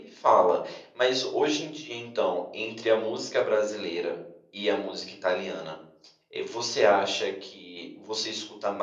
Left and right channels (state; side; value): identical; both; correlation 1.00